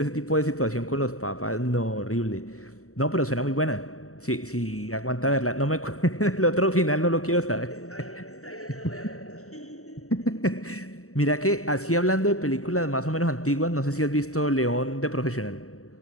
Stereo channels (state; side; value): late; right; 0.64 ms